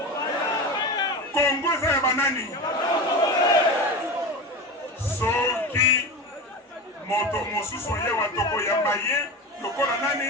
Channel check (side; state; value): both; normal; correlation 0.26